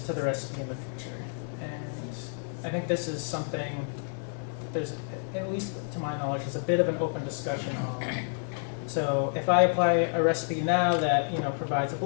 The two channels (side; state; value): right; silent; digital silence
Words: to the recipe in the future? And I think this is something there's, at least to my knowledge, is a bit of an open discussion on. So if I apply a recipe now that provides a